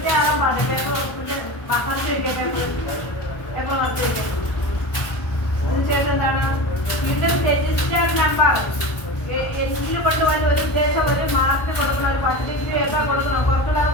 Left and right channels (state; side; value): late; right; 1.1 ms